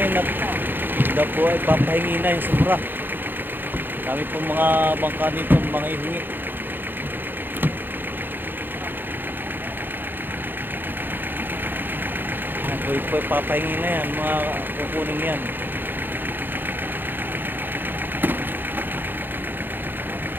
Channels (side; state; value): left; late; 0.095 ms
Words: at daw po ay papahingi na yung sobra. Kami po mga bangka dito mga ihingi. Yan po ay papahingi na yan, mga kukunin yan.